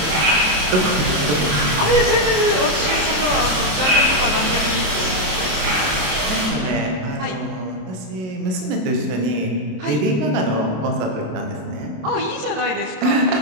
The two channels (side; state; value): left; late; 27 ms